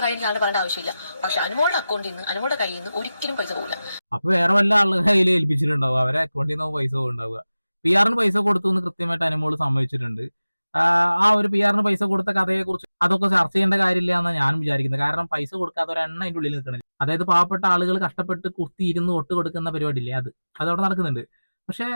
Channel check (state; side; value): inverted; both; correlation -0.96